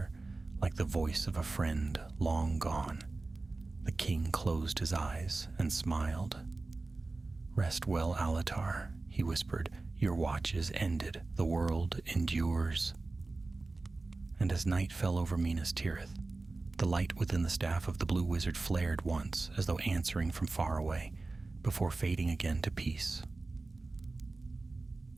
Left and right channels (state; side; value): quieter; left; 3.4 dB